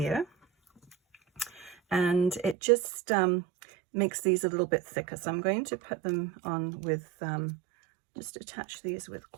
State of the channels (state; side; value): drops out; left; at 2.6 s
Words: And it just makes these a little bit thicker, so I'm going to put them on with just attach these with